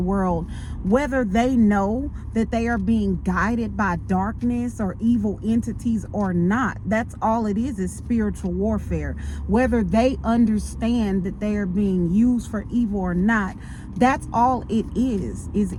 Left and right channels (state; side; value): identical; both; correlation 1.00